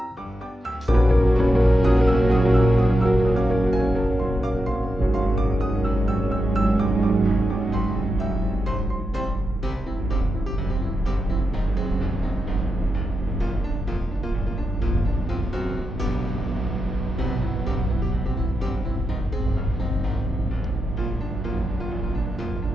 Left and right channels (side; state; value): both; normal; correlation 0.87